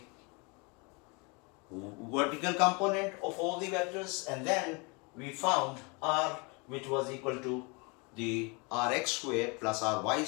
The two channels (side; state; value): right; quieter; 30.1 dB